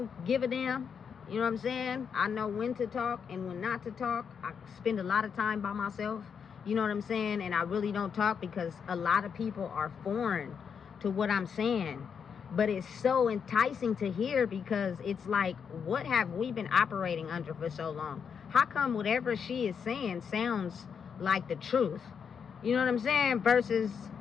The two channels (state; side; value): quieter; right; 6.8 dB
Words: give a damn. You know what I'm saying? I know when to talk and when not to talk. I spend a lot of time by myself. You know what I'm saying? And I really don't talk because a lot of people are foreign to what I'm saying. But it's so enticing to hear, because it's like, what have we been operating under for so long? How come whatever she is saying sounds like the truth? You know what I'm saying? Versus